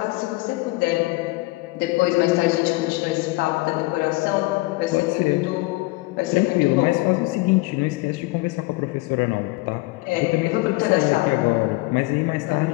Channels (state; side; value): quieter; right; 22.3 dB